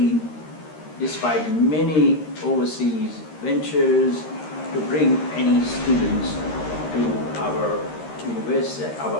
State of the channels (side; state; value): right; late; 13 ms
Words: despite many overseas ventures to bring any students to our university,